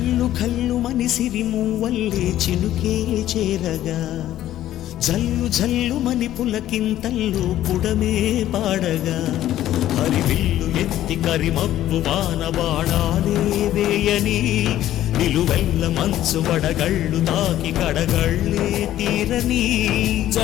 కల్లు మనిసిరి మూవల్లే చినుకే చేరగా జల్లు జల్లు మని పులకింతల్లు పుడమే పాడగా హరివిల్లు ఎత్తి కరిమబ్బు వాన బాణాలే వేయని నిలువెల్ల మంచు వడగళ్ళు తాకి కడగళ్ళే తీరని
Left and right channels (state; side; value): quieter; right; 13.0 dB